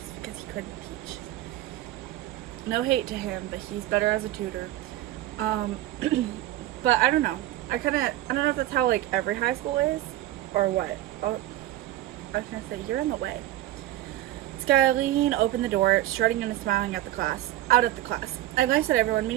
because he couldn't teach. No hate to him, but he's better as a tutor. But I don't know. I don't know if that's how, like, every high school is, or what. Oh, I was gonna say, you're in the way. Skyline opened the door, strutting and smiling out at the class. I glanced at everyone,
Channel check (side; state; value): left; quieter; 14.6 dB